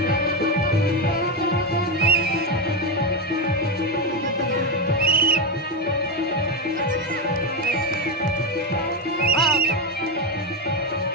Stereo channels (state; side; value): normal; both; correlation 0.09